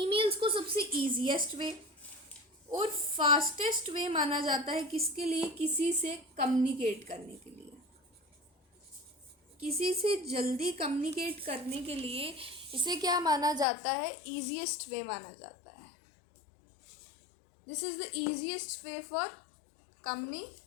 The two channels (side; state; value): right; drops out; at 13.7 s